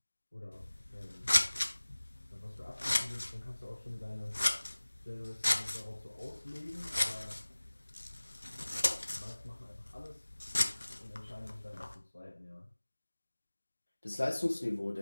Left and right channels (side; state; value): both; inverted; correlation -1.00